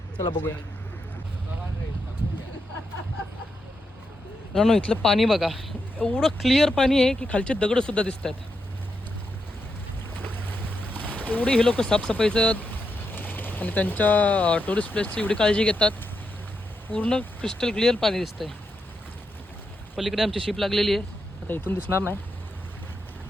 चला बघूया. मित्रांनो, इथलं पाणी बघा, एवढं क्लिअर पाणी आहे की खालचे दगड सुद्धा दिसत आहेत. एवढी हे लोक साफसफाईचं आणि त्यांच्या टुरिस्ट प्लेसची एवढी काळजी घेतात. पूर्ण क्रिस्टल क्लिअर पाणी दिसतंय. पलीकडे आमची शिप लागलेली आहे, आता इथून दिसणार नाही.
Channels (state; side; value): normal; both; correlation 0.84